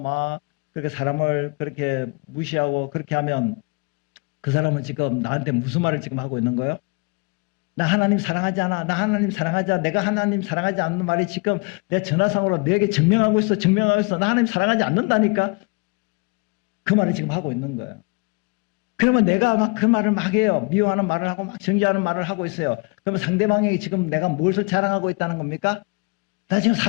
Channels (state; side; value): quieter; right; 29.8 dB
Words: 그렇게 사람을 그렇게 무시하고 그렇게 하면 그 사람은 지금 나한테 무슨 말을 지금 하고 있는 거예요? 나 하나님 사랑하지 않아. 나 하나님 사랑하지 않아. 내가 하나님 사랑하지 않는 말이 지금 내 전화상으로 내게 증명하고 있어. 증명하고 있어. 나 하나님 사랑하지 않는다니까. 그 말을 지금 하고 있는 거예요. 그러면 내가 막 그 말을 막 해요. 미워하는 말을 하고 막 정죄하는 말을 하고 있어요. 그러면 상대방이 지금 내가 무엇을 자랑하고 있다는 겁니까? 나 지금